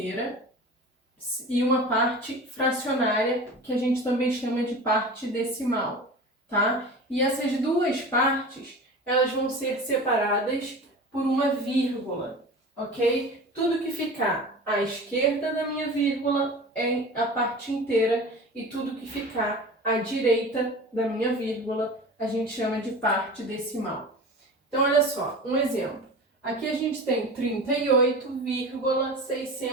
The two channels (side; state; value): both; normal; correlation 0.34